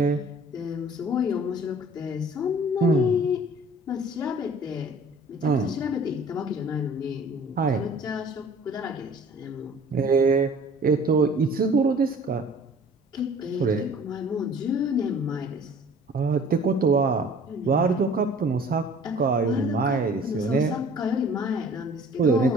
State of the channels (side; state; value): both; normal; correlation 0.49